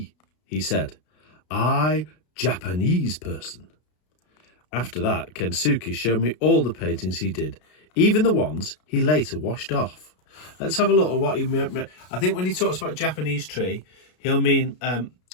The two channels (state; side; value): late; right; 33 ms